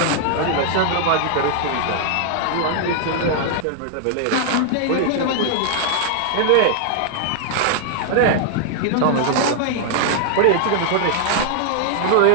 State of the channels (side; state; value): both; different; correlation 0.00